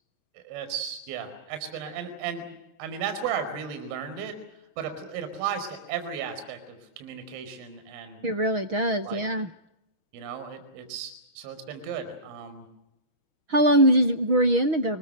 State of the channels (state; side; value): late; left; 6.3 ms